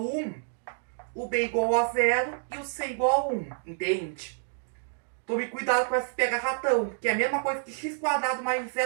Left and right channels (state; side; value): silent; left; digital silence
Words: o b igual a 0 e o c igual a 1. Entende? Tome cuidado com esse pega-ratão, que é a mesma coisa que x quadrado mais